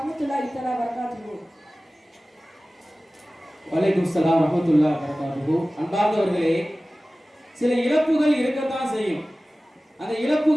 தஆலா வபரகாத்துஹு. வலைக்கும் ஸலாம் வரஹ்மத்துல்லாஹி வபரகாத்துஹு. அன்பார்ந்தவர்களே, சில இழப்புகள் இருக்கத்தான் செய்யும். அந்த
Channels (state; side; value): normal; both; correlation 0.97